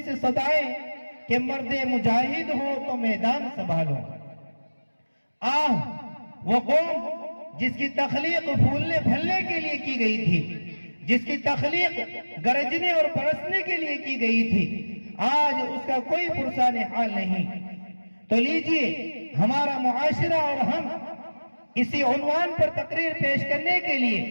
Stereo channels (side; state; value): both; inverted; correlation -1.00